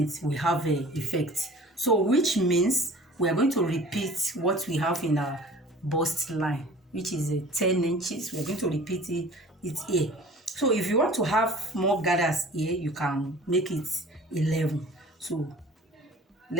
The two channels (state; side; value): normal; both; correlation 0.45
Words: will have an effect. So which means we are going to repeat what we have in our bust line, which is 10 inches. We are going to repeat it here. So if you want to have more gathers here, you can make it 11. So